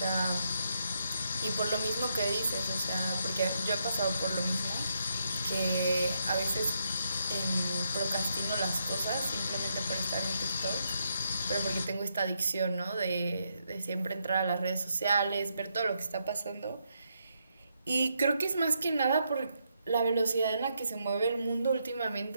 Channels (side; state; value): both; inverted; correlation -0.78